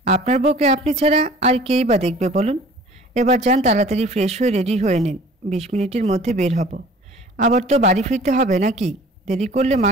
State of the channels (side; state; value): both; normal; correlation 0.48